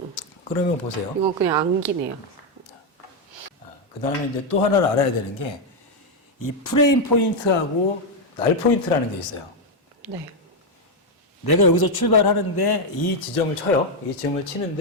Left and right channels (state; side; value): normal; both; correlation 0.03